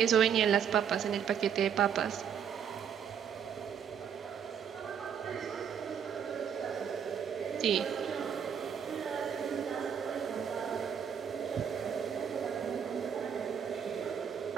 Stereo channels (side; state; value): left; quieter; 7.9 dB